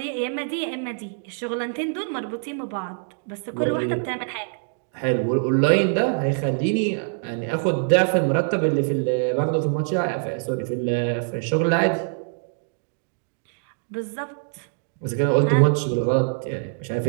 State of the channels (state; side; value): silent; left; digital silence